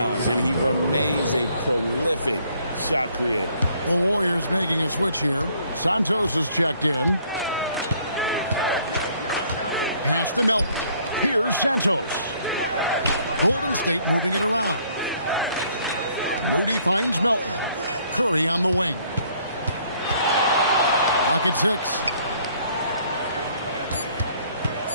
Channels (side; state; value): both; inverted; correlation -0.63